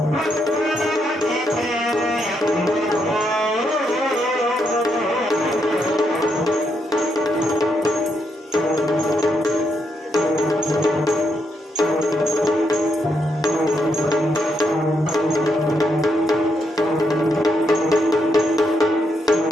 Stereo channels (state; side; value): normal; both; correlation 0.79